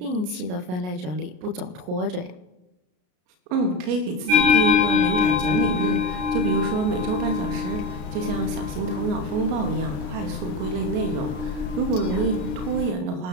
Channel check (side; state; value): left; late; 33 ms